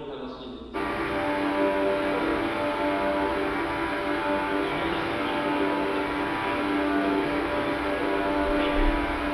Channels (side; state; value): both; identical; correlation 1.00